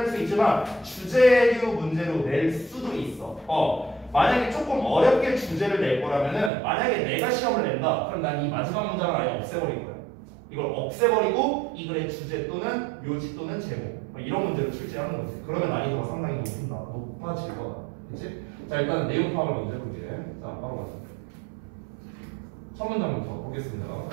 수 있지만 주제류 문제로 낼 수도 있어. 만약에 조금 어렵게 주제를 낼 거라면은 만약에 내가 시험을 낸다. 그럼 난 이 마지막 문장을 아예 없애버릴 거야. 이걸 없애버리고 이 글의 주제 또는 묘지 또는 제목 이런 문제를 출제하는 거지. 그러면 난이도가 상당히 높아질 거다. 그치? 자, 일단 내용 파악을 먼저 해볼게. 자, 바로 가자. 첫 문장부터 보겠습니다.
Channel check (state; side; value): drops out; left; at 6.5 s